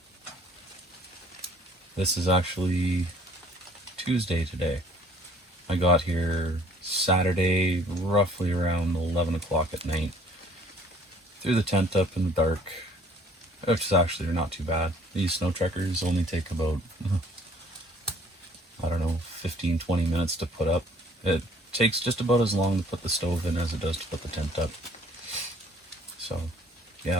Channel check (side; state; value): both; normal; correlation 0.56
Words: This is actually Tuesday today. I got here Saturday, roughly around 11 o'clock at night. Threw the tent up in the dark, which is actually not too bad. These Snowtrekkers only take about, I don't know, 15-20 minutes to put up. It takes just about as long to put the stove in as it does to put the tent up. So,